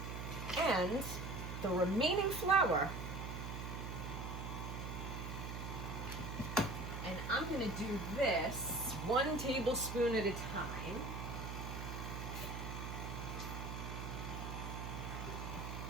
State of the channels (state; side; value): noise; right; hum, 5 dB below the sound